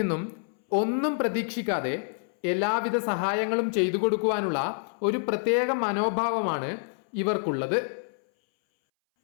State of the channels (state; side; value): silent; right; 60 dB below the other